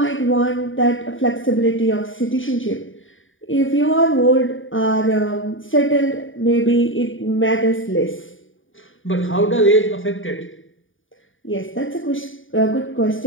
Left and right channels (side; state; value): right; late; 0.57 ms